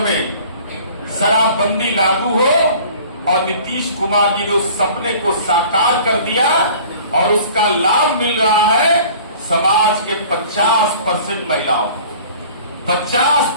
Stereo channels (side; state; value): both; inverted; correlation -0.47